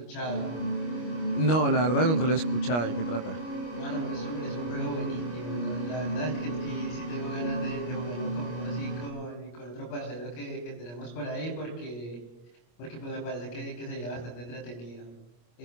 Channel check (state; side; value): late; right; 25 ms